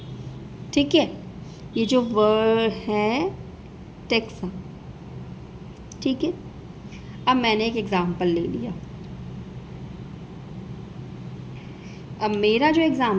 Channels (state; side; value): identical; both; correlation 1.00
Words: ठीक है, ये जो वर्ड है टेक्सा, ठीक है। अब मैंने एक एग्जाम्पल ले लिया। अब मेरा जो